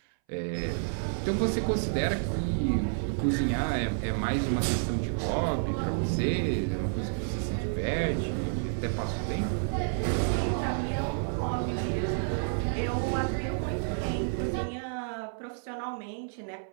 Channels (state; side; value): silent; left; 58 dB below the other